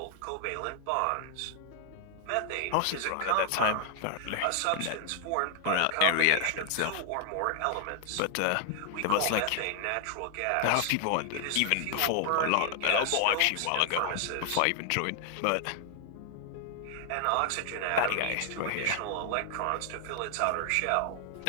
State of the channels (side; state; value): both; different; correlation 0.00